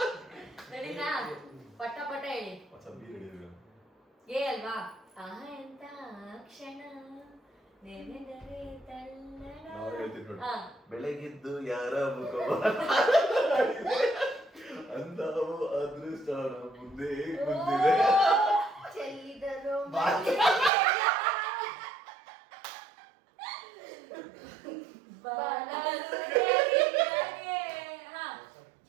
ರೆಡಿನಾ ಪಟ್ಟ ಪಟ್ಟ ಹೇಳಿ ಸ್ವಲ್ಪ ಬಿ ರೆಡಿ ಇರಬೇಕು ಏ ಅಲ್ವಾ ಎಂತ ಕ್ಷಣ ನೆನೆದರೆ ತಲ್ಲಣ ನಾವು ಹೇಳ್ತೀವಿ ನೋಡಿ ಹಾ ಬೆಳಗಿದ್ದು ಯಾರ ಮುಖ ಅಂದಾವು ಅದೃಷ್ಟ ಮುಂದೆ ಮುಂದಿದೆ ಚೆಲ್ಲಿದರು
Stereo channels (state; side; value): drops out; left; at 20.7 s